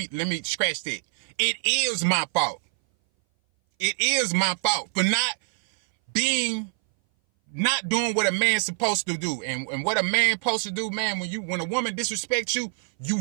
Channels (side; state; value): left; silent; 59 dB below the other